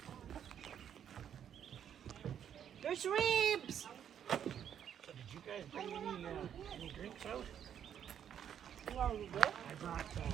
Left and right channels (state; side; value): quieter; left; 9.1 dB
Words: There's ribs! So did you guys bring any drinks out? I brought